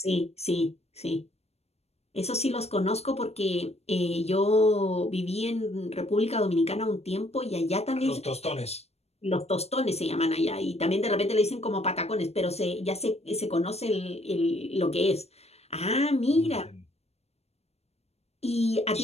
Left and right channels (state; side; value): late; right; 0.31 ms